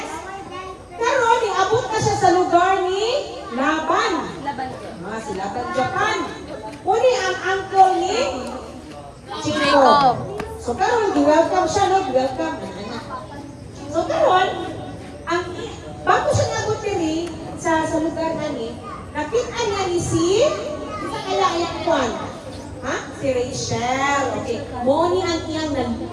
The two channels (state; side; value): identical; both; correlation 1.00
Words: Karon, niabot na siya sa lugar ni Laban. Si Laban Japan. Uni ang uncle ni Jacob. So karon, welcome siya, no? Welcome. So karon, bago siya nabot diri sa lugar nani, nakita niya ni sa kalayan kwan. Ha? Si Rachel. Okay. Moni ang iyang